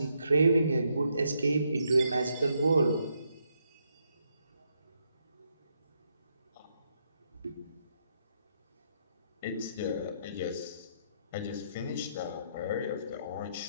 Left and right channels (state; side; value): inverted; both; correlation -0.77